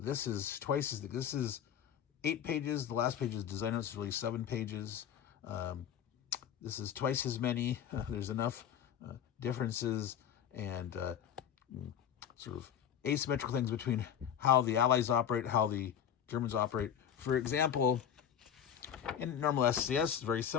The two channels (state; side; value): quieter; right; 9.1 dB